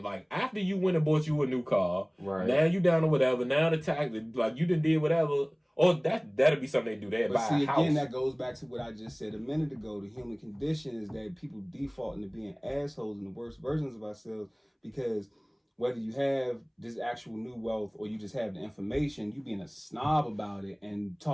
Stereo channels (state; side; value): identical; both; correlation 1.00